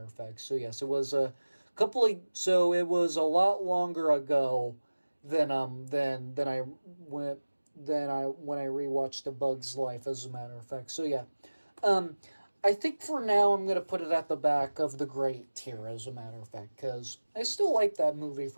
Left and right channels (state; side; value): inverted; both; correlation -1.00